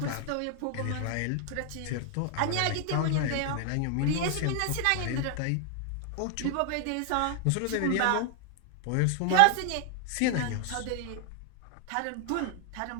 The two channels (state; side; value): different; both; correlation 0.00